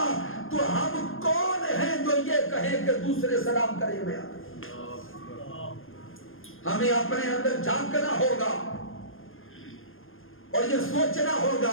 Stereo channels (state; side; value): late; right; 0.60 ms